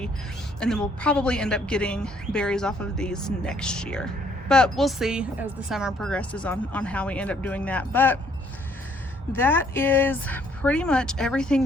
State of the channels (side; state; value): both; normal; correlation 0.65